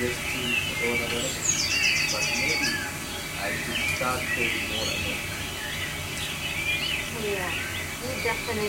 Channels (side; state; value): both; identical; correlation 1.00